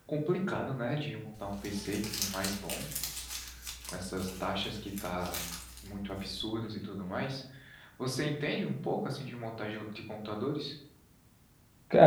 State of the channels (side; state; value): both; identical; correlation 1.00